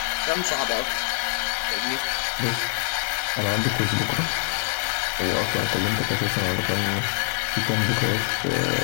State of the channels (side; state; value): right; silent; 62 dB below the other